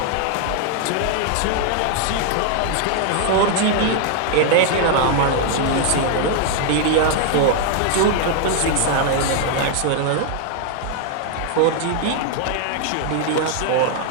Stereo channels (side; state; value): both; different; correlation 0.00